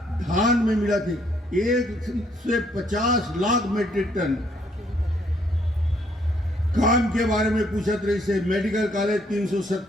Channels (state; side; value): normal; both; correlation 0.68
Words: धान में मिला थी, 1 से 50 लाख मीट्रिक टन। काम के बारे में पूछत रही से, मेडिकल कॉलेज